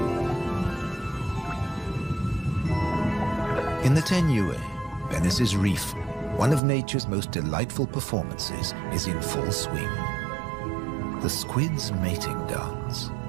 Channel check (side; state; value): left; drops out; at 6.6 s